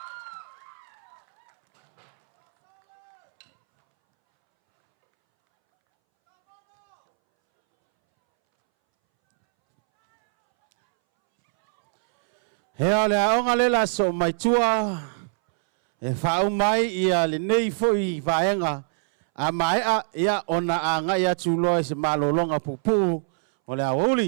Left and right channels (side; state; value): left; silent; 63 dB below the other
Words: Hea le aonga lela so mai tua e whau mai ia le nei foi vaenga a mai a ia ona a ngai atu loa se malolonga pupu o le